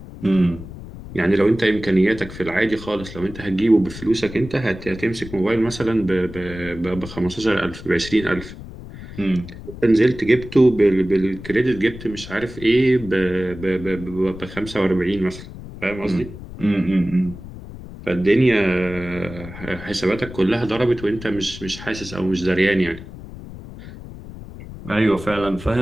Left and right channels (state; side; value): noise; left; rumble, 14 dB below the sound